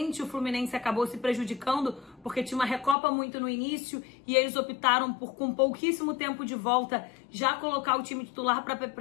o Fluminense acabou se prejudicando porque tinha uma Recopa muito no início e eles optaram por, com pouquíssimo tempo de volta, já colocar o time titular para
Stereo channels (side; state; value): right; drops out; at 3.0 s